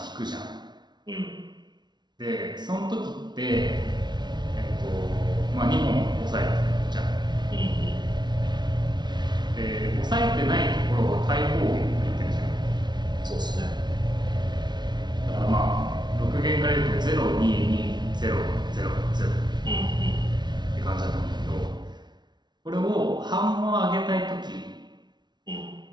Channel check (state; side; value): late; left; 0.20 ms